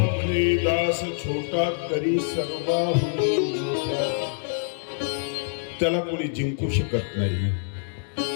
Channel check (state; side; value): silent; right; digital silence